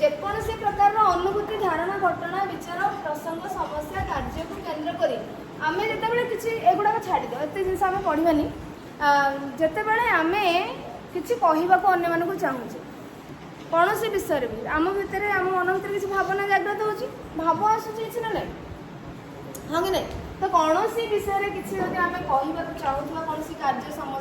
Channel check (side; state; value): both; identical; correlation 1.00